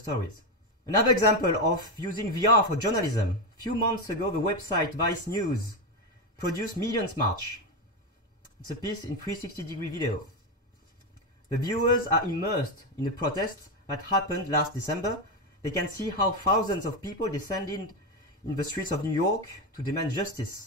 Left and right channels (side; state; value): both; normal; correlation 0.11